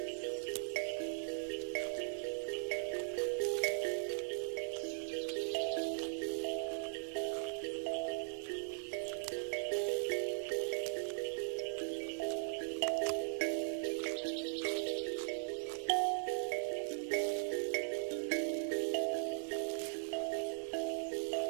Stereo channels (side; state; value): left; silent; digital silence